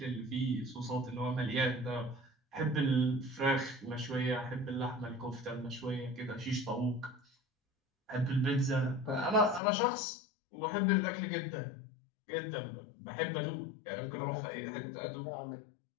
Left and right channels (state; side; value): drops out; right; at 9.6 s